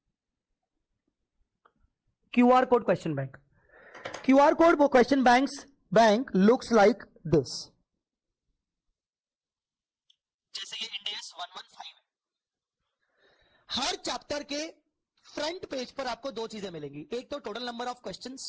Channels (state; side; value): identical; both; correlation 1.00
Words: QR code question bank, QR code वो question bank looks like this. जैसे ये इंडियस 115 है, हर चैप्टर के फ्रंट पेज पर आपको दो चीजें मिलेंगी, एक तो टोटल नंबर ऑफ